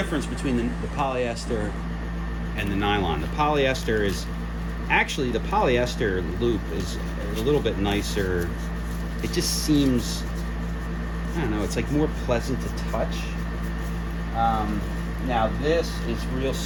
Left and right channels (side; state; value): both; identical; correlation 1.00